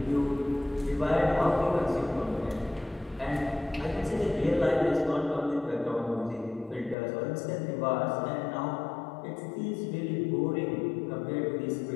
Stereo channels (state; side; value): drops out; right; at 7.0 s